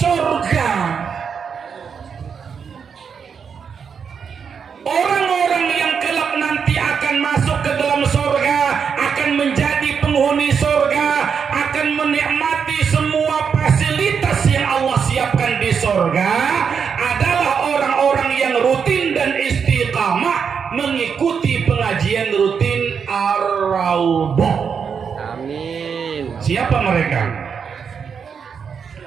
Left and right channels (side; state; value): left; quieter; 6.6 dB